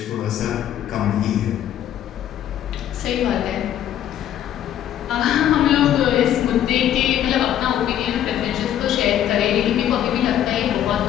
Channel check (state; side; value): quieter; right; 11.0 dB